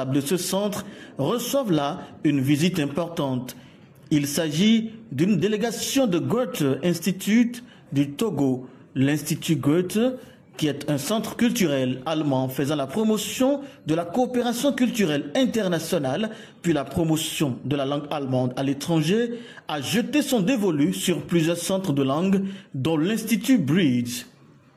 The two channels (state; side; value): identical; both; correlation 1.00